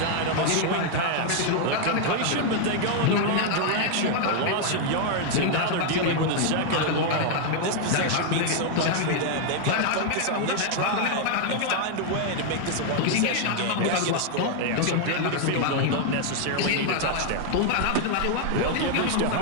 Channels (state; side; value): different; both; correlation 0.00